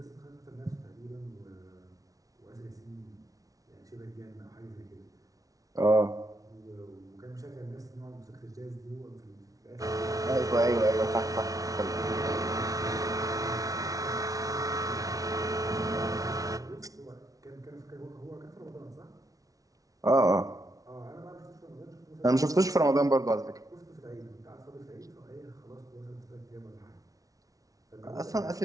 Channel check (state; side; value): late; left; 0.17 ms